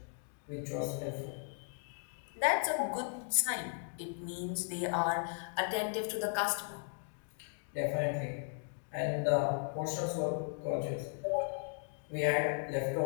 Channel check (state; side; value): silent; right; 53 dB below the other